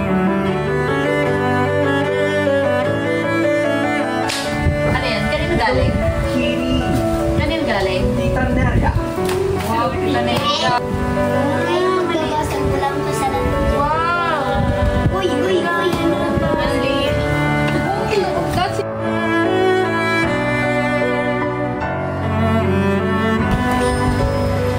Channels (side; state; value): both; identical; correlation 1.00